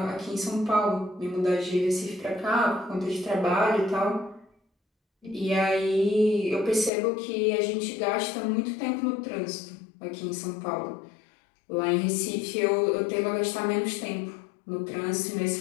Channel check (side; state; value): right; drops out; at 6.9 s